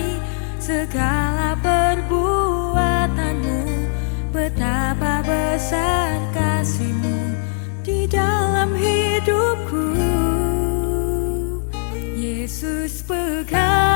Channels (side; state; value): right; silent; digital silence